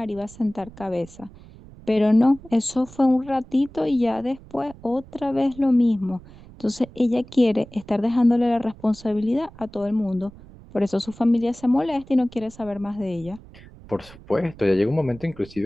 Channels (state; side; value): noise; right; rumble, 20 dB below the sound